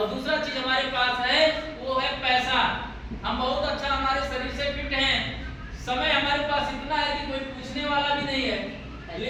दूसरा चीज हमारे पास है वो है पैसा। हम बहुत अच्छा हमारे शरीर से फिट हैं, समय हमारे पास इतना है कि कोई पूछने वाला भी नहीं है,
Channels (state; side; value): identical; both; correlation 1.00